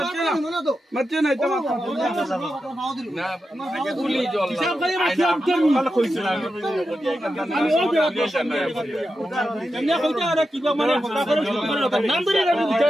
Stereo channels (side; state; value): both; normal; correlation 0.89